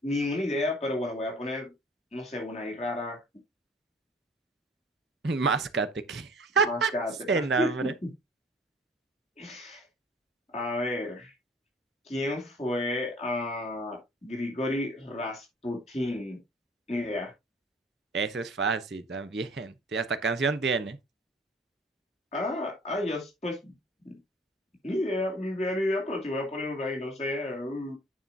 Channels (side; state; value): both; normal; correlation 0.50